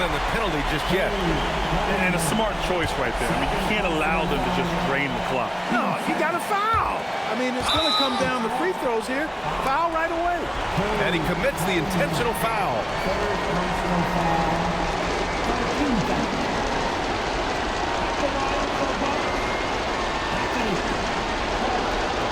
the penalty just yet. And a smart choice right there. I mean, you can't allow them to just drain the clock. No, you got to foul. I mean, it's going to come down to free throws here. Foul right away. And he commits the intentional foul.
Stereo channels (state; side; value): identical; both; correlation 1.00